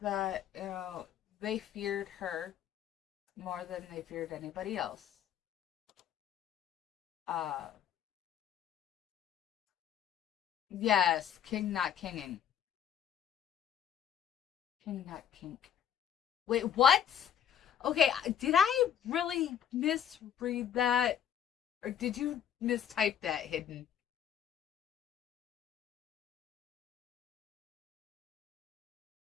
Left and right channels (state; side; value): quieter; right; 9.2 dB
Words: that, they feared her more than they feared anybody else. Yes, king not kinging. King not kink. Wait, what? Okay, did I really misread that? Or did you mistype that, Hidden?